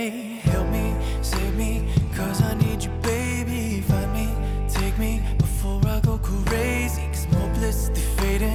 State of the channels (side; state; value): both; identical; correlation 1.00